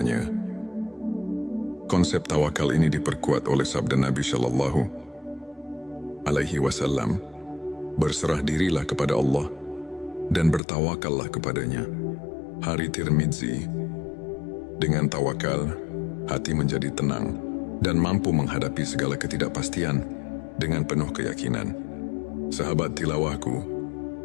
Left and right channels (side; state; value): right; drops out; at 10.6 s